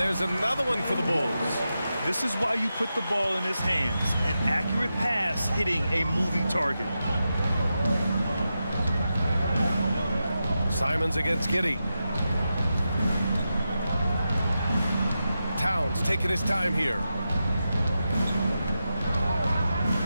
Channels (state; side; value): inverted; both; correlation -0.89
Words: another one for the Bulls. This is why you put the ball in his hands. An accurate pass hitting a moving target. Simons against Giddey. Towns taking his time here.